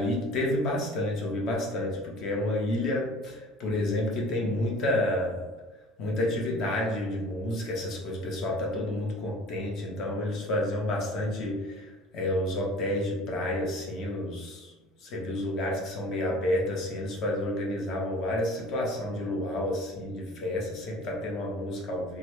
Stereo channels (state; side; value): normal; both; correlation 0.46